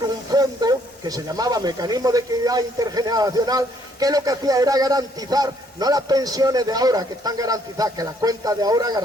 un fondo que se llamaba Mecanismo de Equidad Intergeneracional, que lo que hacía era garantizar, no las pensiones de ahora que están garantizadas, que las cuentas de ahora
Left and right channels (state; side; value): normal; both; correlation 0.67